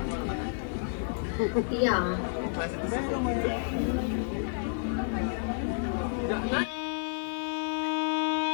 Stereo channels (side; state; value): right; silent; 56 dB below the other